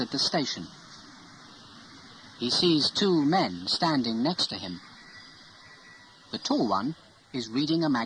the station. He sees two men standing next to him. The tall one is reading a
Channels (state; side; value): identical; both; correlation 1.00